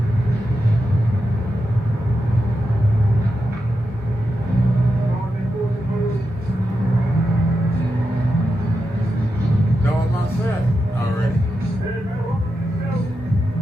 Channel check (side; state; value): both; normal; correlation 0.88